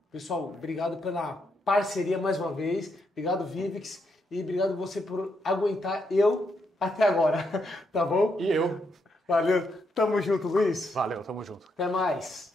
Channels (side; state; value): both; normal; correlation 0.79